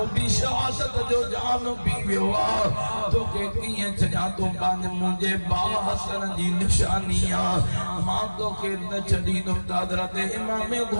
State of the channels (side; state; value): both; inverted; correlation -1.00